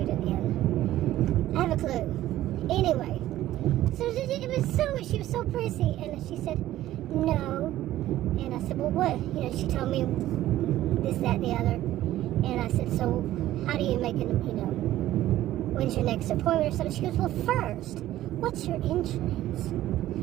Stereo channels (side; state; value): left; quieter; 14.2 dB